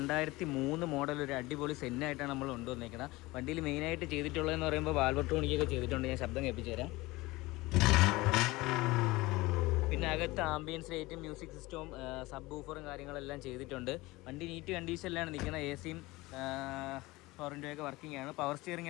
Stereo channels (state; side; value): quieter; right; 20.9 dB